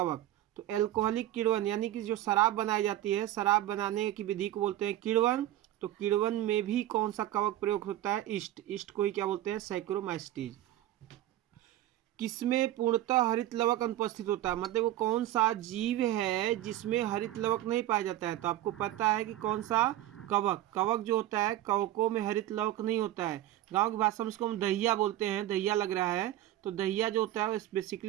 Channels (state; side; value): quieter; left; 13.9 dB